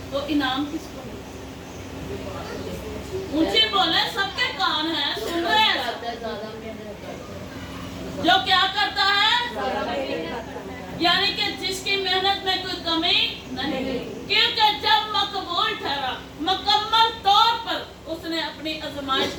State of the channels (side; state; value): both; identical; correlation 1.00